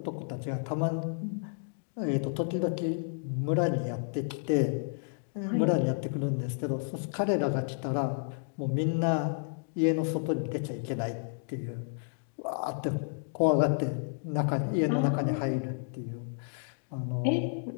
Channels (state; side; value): silent; right; digital silence